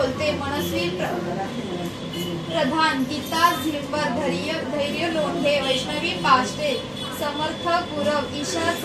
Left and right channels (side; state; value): both; identical; correlation 1.00